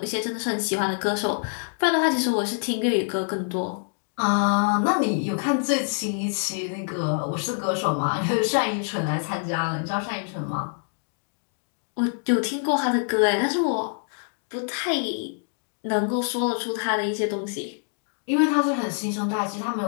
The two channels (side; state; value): right; silent; 61 dB below the other